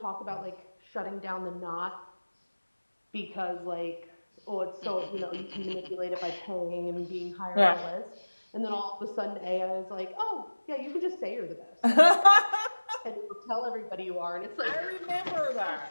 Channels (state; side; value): inverted; both; correlation -1.00